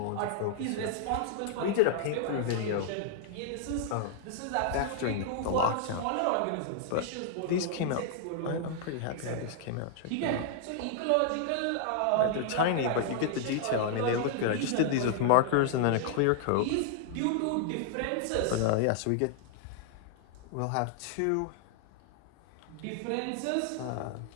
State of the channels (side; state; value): both; different; correlation -0.01